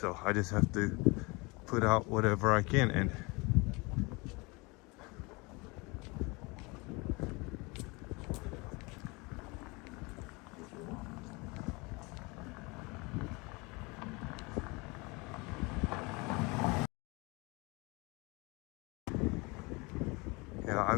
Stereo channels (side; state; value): right; quieter; 26.6 dB